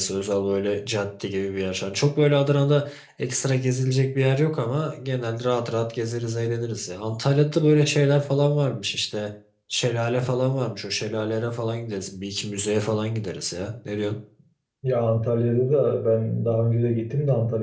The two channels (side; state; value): both; identical; correlation 1.00